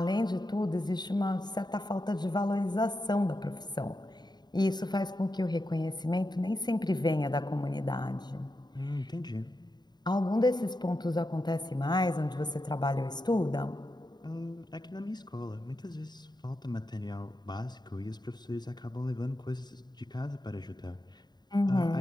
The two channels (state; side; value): late; right; 0.20 ms